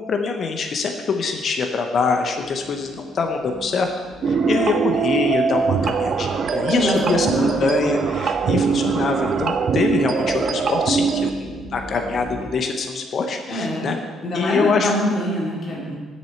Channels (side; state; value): both; normal; correlation 0.70